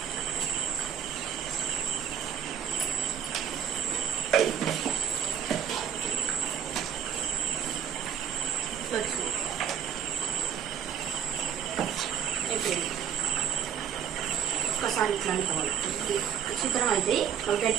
ఒకసారి ఇట్లా అనుకోవాలి. చిత్రం అయితే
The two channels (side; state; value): left; quieter; 8.4 dB